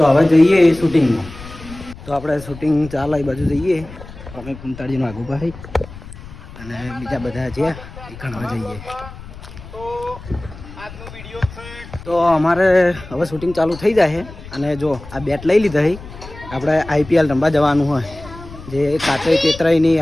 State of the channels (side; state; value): left; noise; rumble, 15 dB below the sound